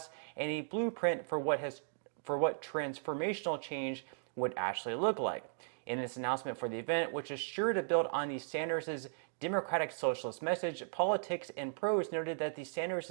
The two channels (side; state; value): left; silent; digital silence